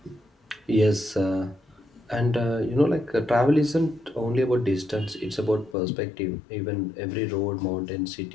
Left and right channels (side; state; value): right; drops out; at 5.8 s